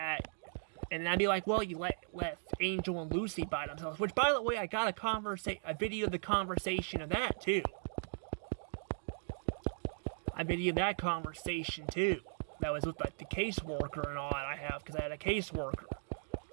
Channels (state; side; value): silent; left; digital silence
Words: and I'd be like, well, you left Angel and Lucy by themselves, which, by the way, I got a video of the conversation of that, too. I videoed that conversation, too. That was with, the caseworker and all that I have, because I had a caseworker.